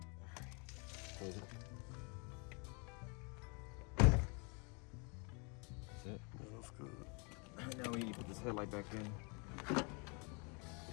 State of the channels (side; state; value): right; quieter; 33.3 dB